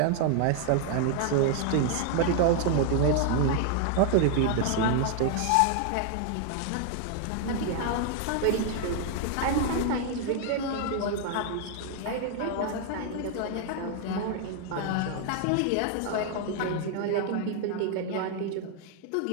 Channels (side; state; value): both; different; correlation 0.00